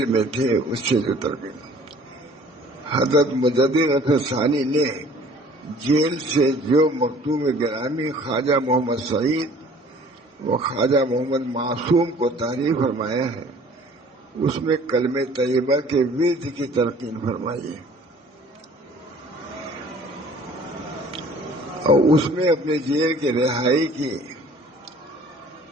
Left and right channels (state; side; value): normal; both; correlation 0.52